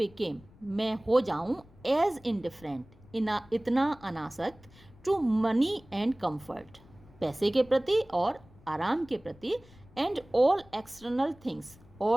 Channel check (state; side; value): noise; left; rumble, 25 dB below the sound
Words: मैं हो जाऊँ, एज इनडिफरेंट, इतना अनासक्त, टू मनी एंड कम्फर्ट, पैसे के प्रति और आराम के प्रति, एंड ऑल एक्सटर्नल थिंग्स,